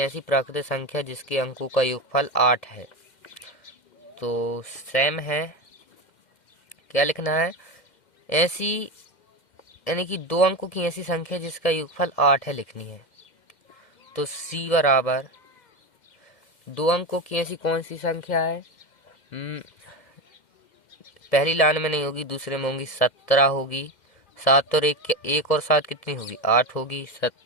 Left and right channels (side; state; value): right; late; 2.1 ms